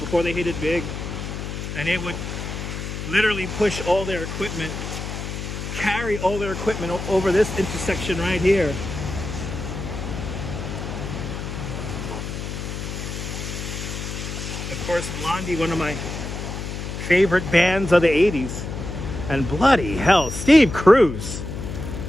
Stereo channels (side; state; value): left; noise; hum, 6 dB below the sound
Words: it big. And they would literally push all their equipment, carry all their equipment over this intersection right here. Of course, Blondie, one of my favorite bands of the 80s. And bloody hell, Steve Cruz.